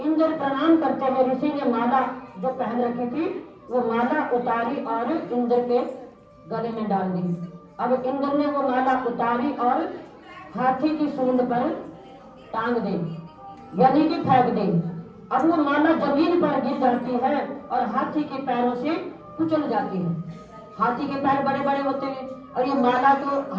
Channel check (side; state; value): both; identical; correlation 1.00